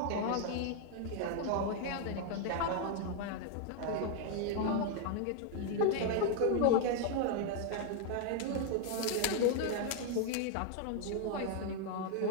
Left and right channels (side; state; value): both; different; correlation 0.00